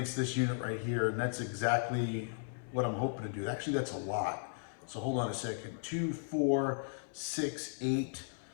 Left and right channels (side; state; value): right; silent; 54 dB below the other